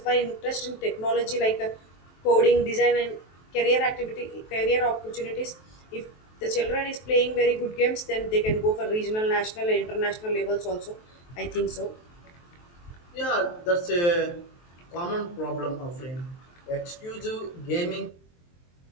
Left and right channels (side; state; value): right; late; 23 ms